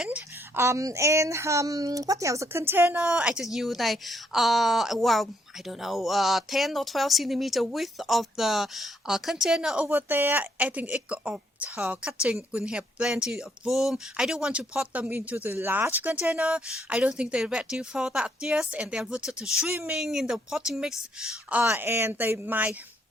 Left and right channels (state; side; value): normal; both; correlation 0.71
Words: What else? The container I just use I don't know, 10 or 12 centimeter width of the container over there. I think it of cutting will have plenty of room. I don't want to pot them into the large container. I don't think they're ready for that yet, and they're rooted to swimming in the potting mix, and they might